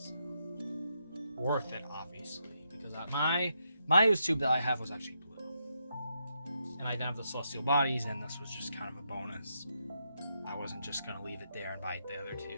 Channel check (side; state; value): both; inverted; correlation -0.81